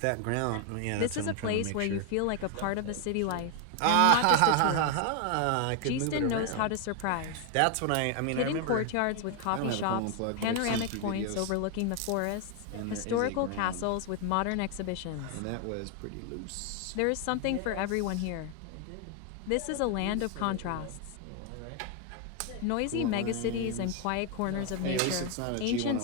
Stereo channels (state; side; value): different; both; correlation 0.01